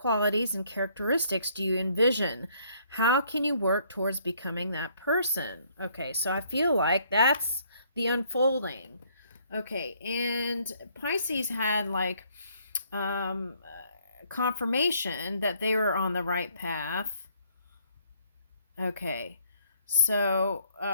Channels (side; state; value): both; inverted; correlation -0.65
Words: and characteristics do you envision? How can you work towards becoming that person? Okay, so I feel like that's the unfolding. Okay, and Pisces had like confirmation that they were on the right path. Okay, so